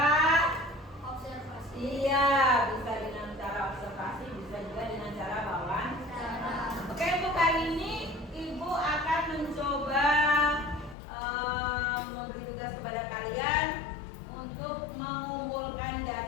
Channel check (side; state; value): right; drops out; at 11.0 s